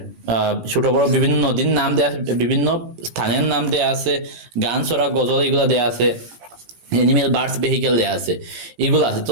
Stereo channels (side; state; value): left; late; 17 ms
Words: ছোট বড় বিভিন্ন নদীর নাম দেয়া আছে, বিভিন্ন স্থানের নাম দেয়া আছে, গান ছড়া গজল এগুলো দেয়া আছে, অ্যানিমেল বার্ডস ভেহিকেল দেওয়া আছে, এগুলো আছে। তো